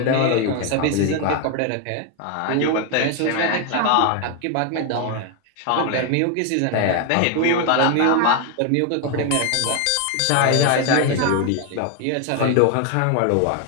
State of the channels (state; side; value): different; both; correlation 0.01